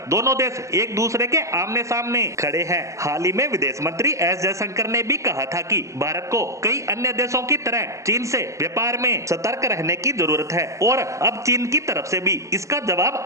दोनों देश एक दूसरे के आमने सामने खड़े हैं। हाल ही में विदेश मंत्री एस जयशंकर ने भी कहा था कि भारत को कई अन्य देशों की तरह चीन से व्यापार में सतर्क रहने की जरूरत है और अब चीन की तरफ से भी इसका जवाब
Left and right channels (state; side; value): late; left; 0.15 ms